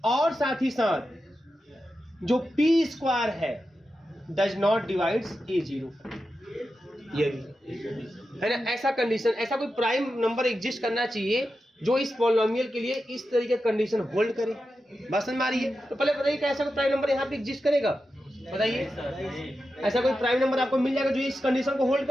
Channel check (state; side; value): normal; both; correlation 0.90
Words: और साथ ही साथ जो p स्क्वायर है does not divides a0, ये भी है ना। ऐसा कंडीशन, ऐसा कोई प्राइम नंबर एग्जिस्ट करना चाहिए जो इस पॉलिनोमियल के लिए इस तरीके कंडीशन होल्ड करे। बात समझ में आ रही है? तो पहले बताइए कि ऐसा कोई प्राइम नंबर यहाँ पे एग्जिस्ट करेगा, बताइए। ऐसा कोई प्राइम नंबर आपको मिल जाएगा जो इस कंडीशन को होल्ड